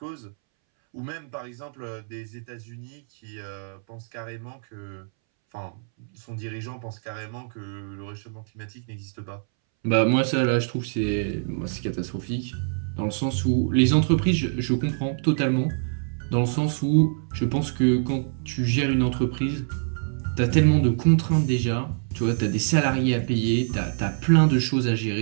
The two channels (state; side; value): silent; left; 62 dB below the other